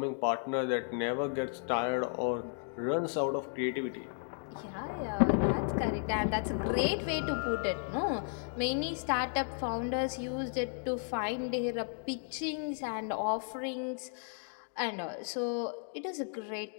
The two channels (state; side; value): silent; right; 55 dB below the other